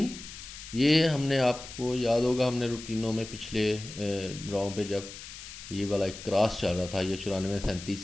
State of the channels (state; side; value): noise; left; hiss, 13 dB below the sound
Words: ये हमने, आपको याद होगा, हमने रूटीनों में पिछले ड्राव पे जब ये वाला एक क्रॉस चल रहा था, ये 94-37